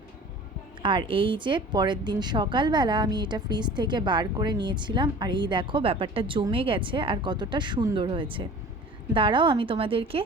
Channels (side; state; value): both; normal; correlation 0.42